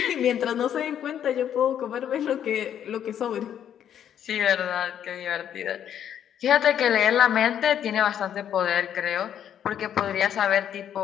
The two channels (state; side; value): quieter; right; 9.6 dB